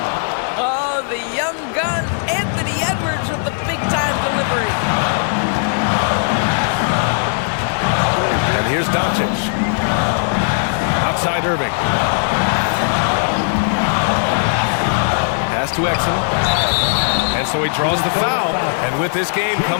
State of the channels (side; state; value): right; silent; digital silence